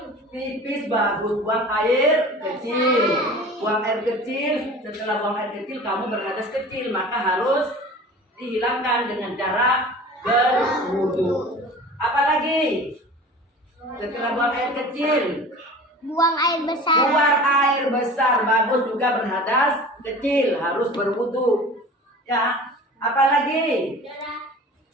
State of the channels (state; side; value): normal; both; correlation 0.40